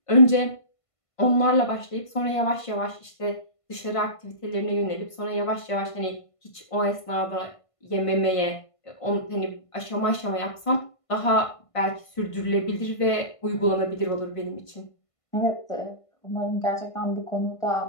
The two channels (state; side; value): late; right; 1.5 ms